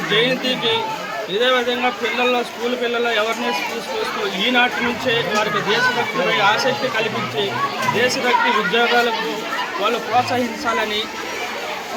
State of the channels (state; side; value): identical; both; correlation 1.00